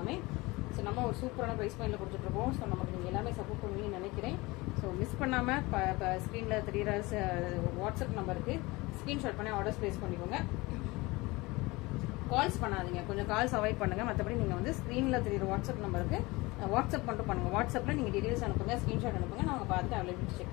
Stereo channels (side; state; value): right; quieter; 22.6 dB